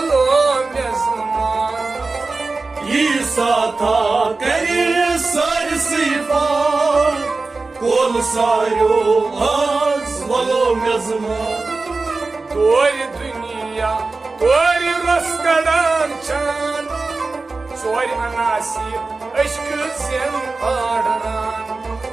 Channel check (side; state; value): left; quieter; 3.7 dB